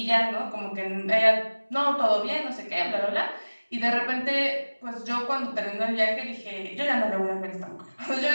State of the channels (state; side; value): inverted; both; correlation -1.00